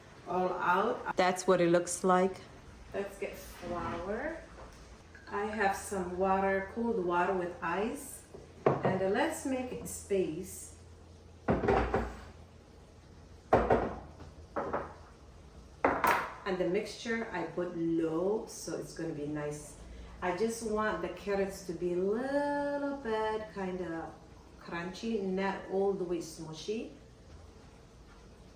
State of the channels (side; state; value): both; identical; correlation 1.00